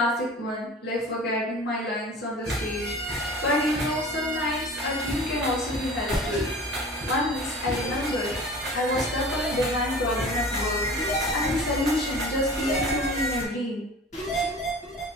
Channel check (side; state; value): both; normal; correlation 0.40